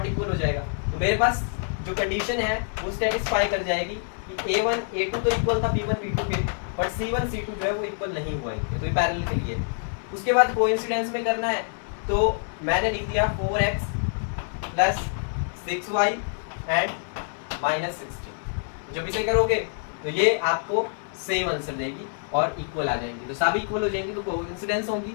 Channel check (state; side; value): silent; right; 59 dB below the other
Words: इक्वल हो जाएगा। तो मेरे पास जो कंडीशन है वो सेटिस्फाई कर जाएगी कि A1 A2 तो इक्वल था B1 B2 के, और C1 C2 जो है वो इक्वल नहीं हुआ है, तो ये पैरेलल के लिए। उसके बाद कोइंसिडेंस में करना है, तो मैंने लिख दिया 4x + 6y एंड -16। जब इसे करोगे तो ये आपको सेम आंसर देगी और इक्वल आ जाएंगी। तो सभी इक्वल हो जाएंगी तो कोइंसिडेंस होगी,